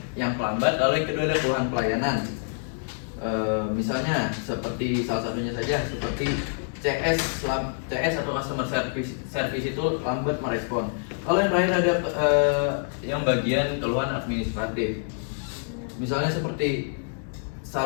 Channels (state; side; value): silent; right; digital silence